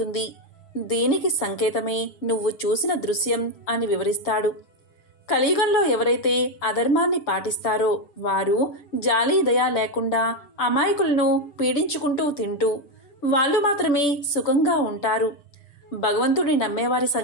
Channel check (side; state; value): right; late; 6.9 ms